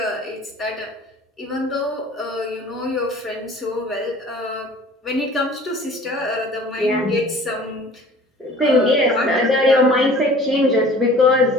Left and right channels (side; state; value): both; normal; correlation 0.47